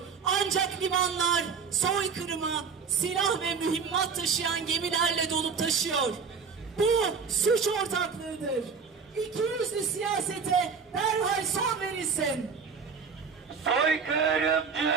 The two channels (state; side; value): quieter; left; 5.7 dB